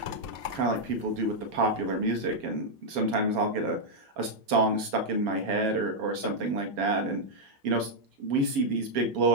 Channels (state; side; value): late; left; 7.2 ms